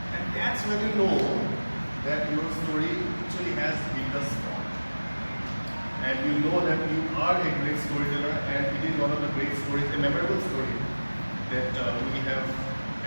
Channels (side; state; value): both; inverted; correlation -1.00